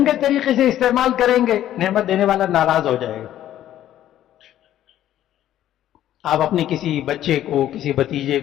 طریقے سے استعمال کریں گے، نعمت دینے والا ناراض ہو جائے گا۔ آپ اپنے کسی بچے کو، کسی بھتیجے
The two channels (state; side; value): quieter; right; 12.2 dB